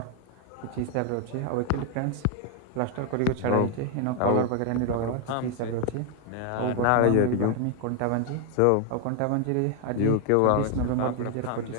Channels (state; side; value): different; both; correlation 0.00